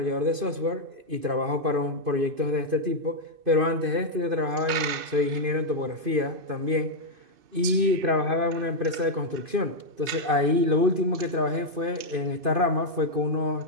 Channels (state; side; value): late; left; 2.5 ms